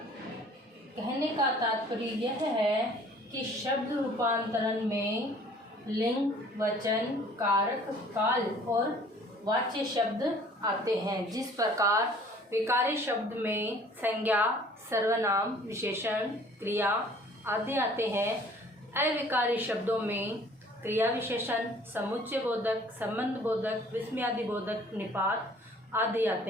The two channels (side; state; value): both; normal; correlation 0.53